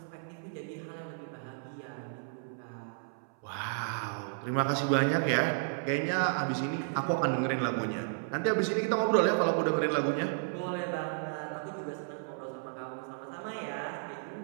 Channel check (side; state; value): left; silent; 56 dB below the other